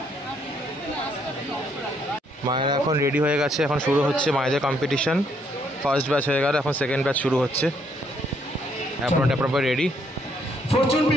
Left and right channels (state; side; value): normal; both; correlation 0.70